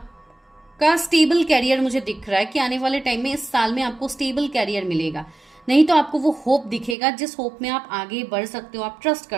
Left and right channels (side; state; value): left; drops out; at 7.0 s